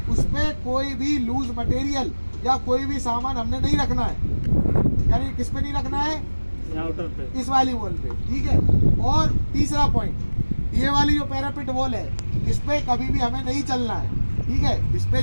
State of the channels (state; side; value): inverted; both; correlation -1.00